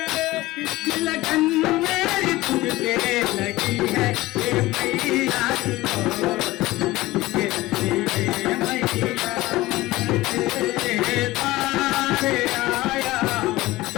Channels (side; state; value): right; quieter; 18.5 dB